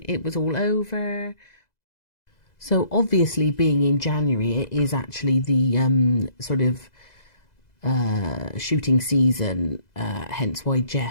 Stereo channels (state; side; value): late; right; 2.0 ms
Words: it was all over. So obviously, being in January, it is actually the sort of shooting season, hence why